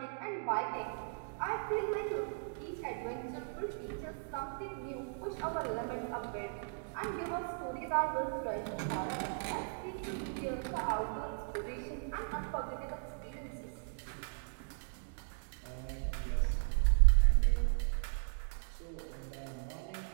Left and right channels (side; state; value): left; silent; digital silence